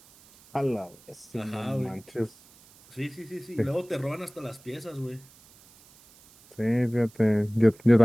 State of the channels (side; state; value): right; noise; hiss, 26 dB below the sound